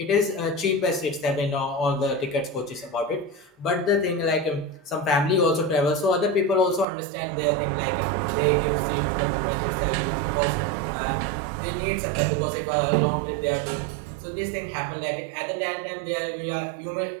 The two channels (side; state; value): left; drops out; at 6.9 s